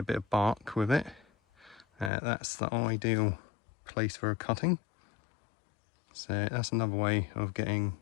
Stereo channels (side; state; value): right; drops out; at 2.1 s